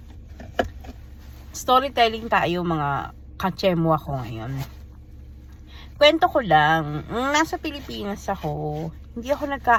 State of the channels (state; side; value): identical; both; correlation 1.00